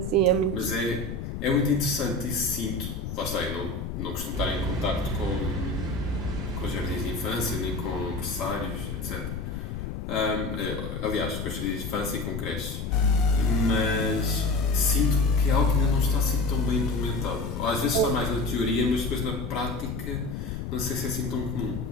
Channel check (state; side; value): noise; left; rumble, 6 dB below the sound